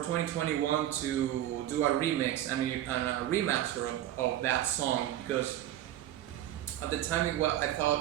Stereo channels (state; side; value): quieter; left; 12.7 dB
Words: to do a remix and a remaster of that song, because at the time I